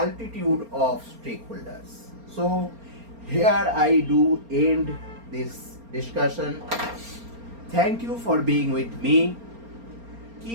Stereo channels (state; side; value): late; left; 4.3 ms